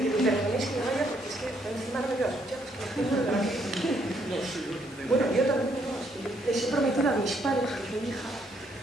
me perdonéis que me vaya porque es que encima no me quedo a escuchar, es que me tengo de Bueno, yo también les he prometido a mis padres, que soy hija,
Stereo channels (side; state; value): both; normal; correlation 0.71